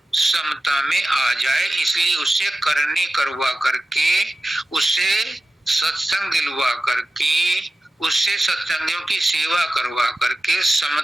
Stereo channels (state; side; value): normal; both; correlation 0.94